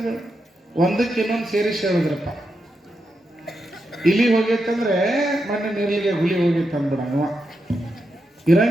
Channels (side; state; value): both; normal; correlation 0.85